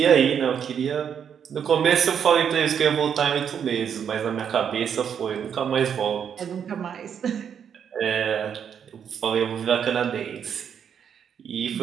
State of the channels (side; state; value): left; quieter; 8.0 dB